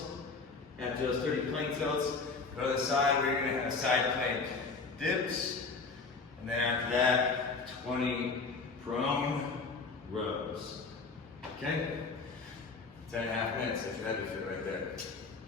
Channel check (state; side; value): quieter; right; 4.3 dB